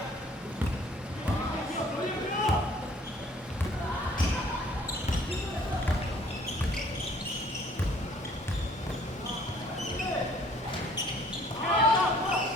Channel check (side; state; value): both; normal; correlation 0.57